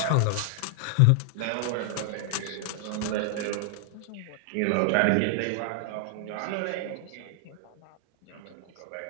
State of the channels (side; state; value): both; different; correlation 0.00